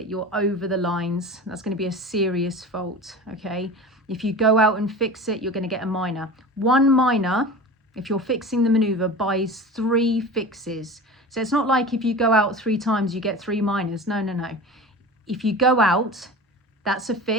you're over the lines. That's going to be a serious fault, okay? If you go out and fix it, you're going to get a minor. 1 minor, if you're fixing the maneuver, buys 3 fixes. So it's not like if you go out 3 times, you get 3 minors. No. If you go out, that's a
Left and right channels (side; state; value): both; normal; correlation 0.34